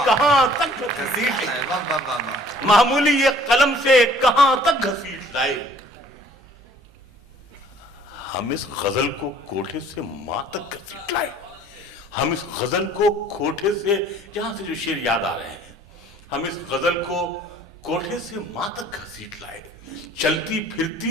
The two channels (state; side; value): normal; both; correlation 0.55